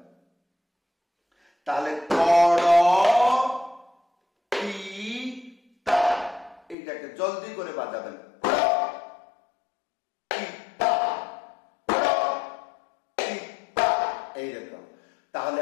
তাহলে কড় তি তা। এইটাকে জলদি করে বাজাবেন। এইরকম। তাহলে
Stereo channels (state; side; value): drops out; right; at 6.8 s